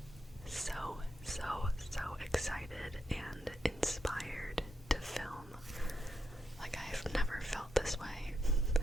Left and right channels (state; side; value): normal; both; correlation 0.83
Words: so excited and inspired to film. Like, I've never felt this way.